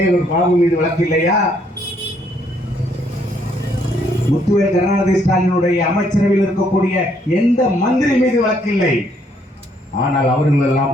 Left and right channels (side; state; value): both; normal; correlation 0.69